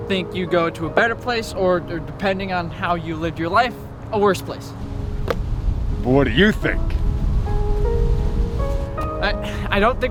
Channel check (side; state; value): both; identical; correlation 1.00